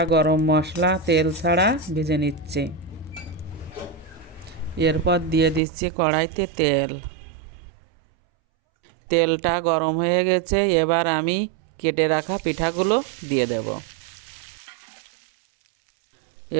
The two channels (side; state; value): left; drops out; at 5.6 s